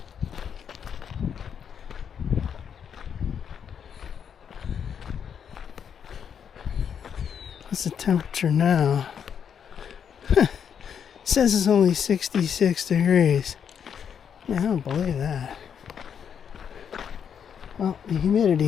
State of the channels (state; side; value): quieter; right; 7.7 dB